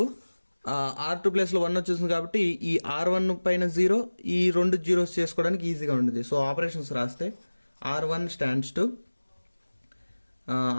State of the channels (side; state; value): both; inverted; correlation -1.00